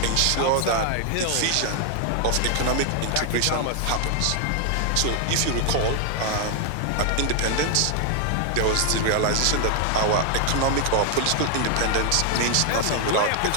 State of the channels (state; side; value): different; both; correlation 0.00